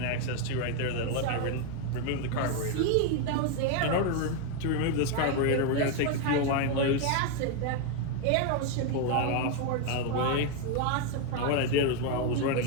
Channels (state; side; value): different; both; correlation 0.01